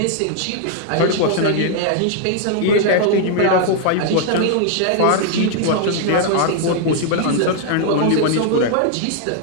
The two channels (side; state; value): both; different; correlation -0.01